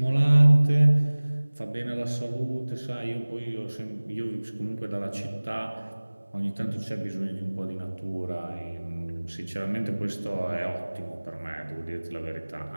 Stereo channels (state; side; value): inverted; both; correlation -1.00